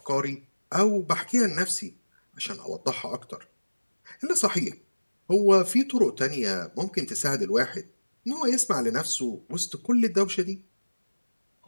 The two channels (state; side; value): inverted; both; correlation -1.00